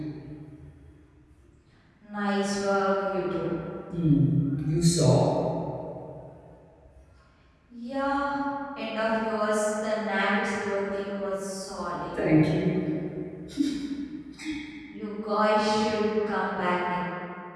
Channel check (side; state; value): both; identical; correlation 1.00